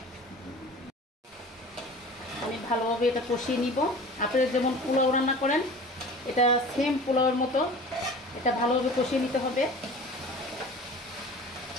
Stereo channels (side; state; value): both; normal; correlation 0.40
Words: আমি ভালোভাবে এটা কষিয়ে নিব। আপনারা যেমন পোলাও রান্না করেন এটা সেম পোলাওয়ের মতো এটা ভালোভাবে কষিয়ে নিতে হবে।